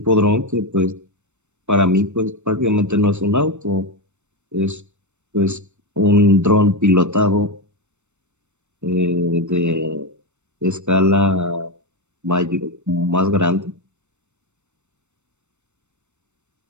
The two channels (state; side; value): late; left; 0.83 ms